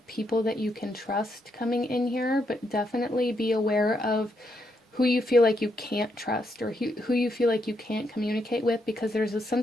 people that you can trust coming in here, but definitely be aware of who you feel like you can't trust, or who you feel like you can't communicate with, because there's a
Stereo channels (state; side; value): normal; both; correlation 0.79